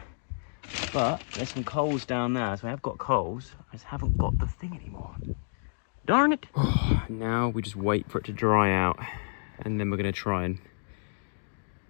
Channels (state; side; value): silent; right; digital silence